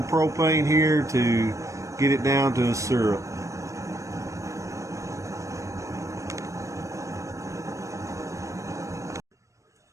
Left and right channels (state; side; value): late; left; 0.15 ms